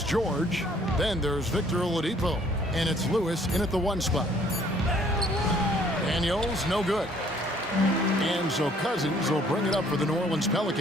George. Then there's Victor Oladipo. And it's Lewis in at the 1 spot. Daniels, no good. And so Cousins will bring it up for the New Orleans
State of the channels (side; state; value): both; normal; correlation 0.60